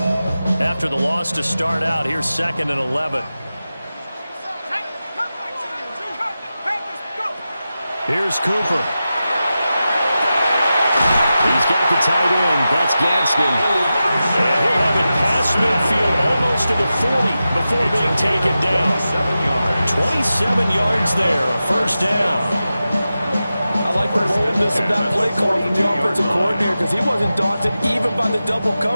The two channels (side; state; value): both; inverted; correlation -0.93